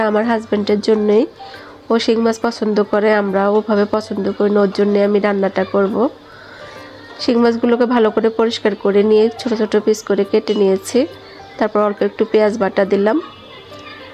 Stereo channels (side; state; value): both; identical; correlation 1.00